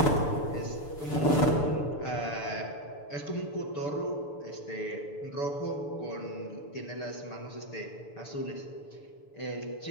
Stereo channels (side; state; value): right; late; 6.9 ms